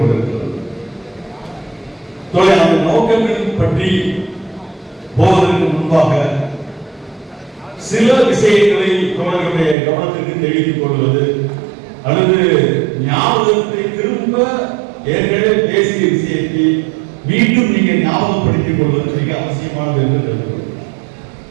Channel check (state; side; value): drops out; left; at 9.8 s